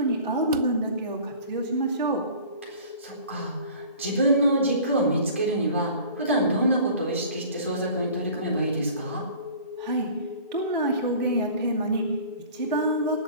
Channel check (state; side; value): inverted; both; correlation -0.45